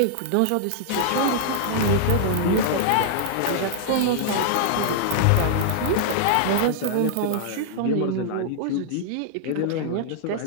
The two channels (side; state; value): both; different; correlation -0.01